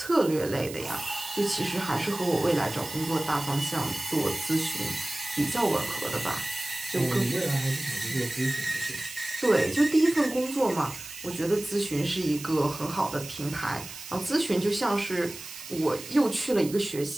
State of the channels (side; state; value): right; noise; hiss, 13 dB below the sound